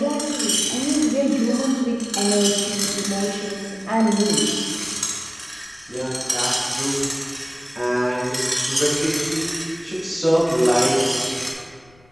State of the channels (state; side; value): noise; left; rumble, 30 dB below the sound